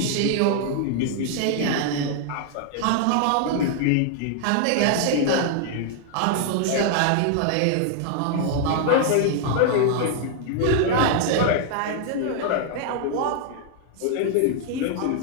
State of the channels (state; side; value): different; both; correlation 0.00